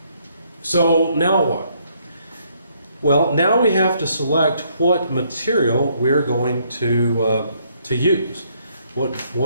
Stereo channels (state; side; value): inverted; both; correlation -0.70